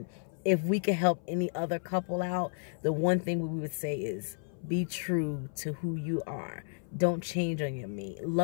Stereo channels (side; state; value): right; silent; 56 dB below the other